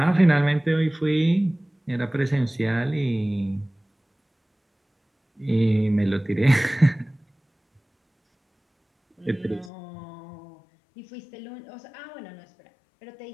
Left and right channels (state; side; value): drops out; right; at 9.7 s